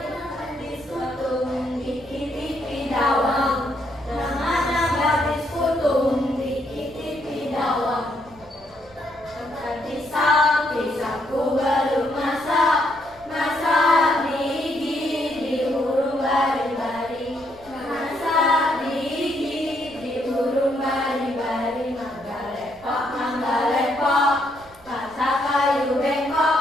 kutung dikit-dikit dawang. Namanya gadis kutung dikit-dikit dawang. Otak pisang, pisangku belum masak. Masak gigi di hurung bari-bari. Masak gigi di hurung bari-bari. Manggalepok, manggalepok. Masak kayu bengkok.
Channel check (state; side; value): noise; right; rumble, 25 dB below the sound